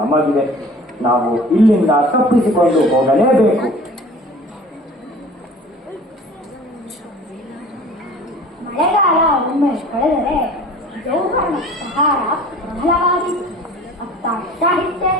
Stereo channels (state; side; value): normal; both; correlation 0.45